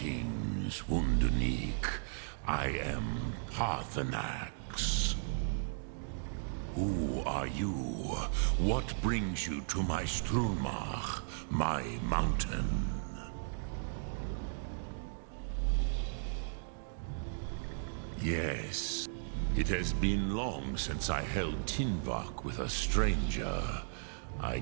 Wunderneek. I am Paarthurnax. Who are you? What brings you to my Strunmach, my mountain? Yes, it has been long since I held Tinvak with a stranger. I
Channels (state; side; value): silent; left; digital silence